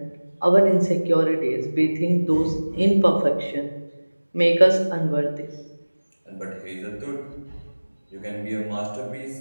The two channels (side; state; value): both; inverted; correlation -1.00